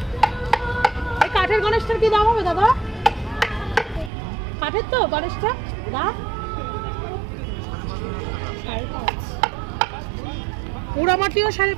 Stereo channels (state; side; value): drops out; left; at 4.1 s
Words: এই কাঠের গণেশটার কি দাম হবে দাদা? কাঠের তো গণেশটা দাম 5.5, পোড়ামাটিও